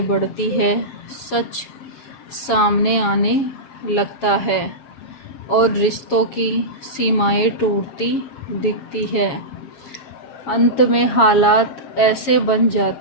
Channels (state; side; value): late; right; 7.3 ms